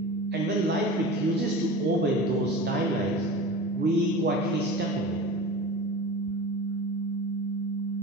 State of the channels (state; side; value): normal; both; correlation 0.33